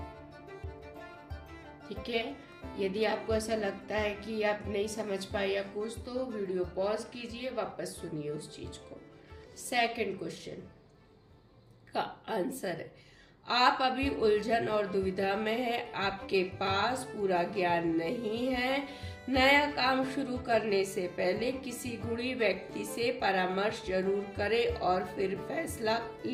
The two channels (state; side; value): identical; both; correlation 1.00